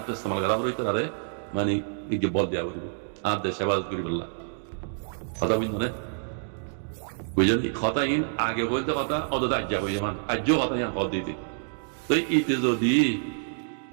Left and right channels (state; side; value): silent; left; digital silence